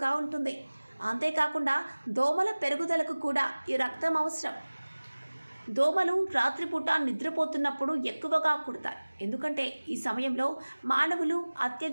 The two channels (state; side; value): inverted; both; correlation -1.00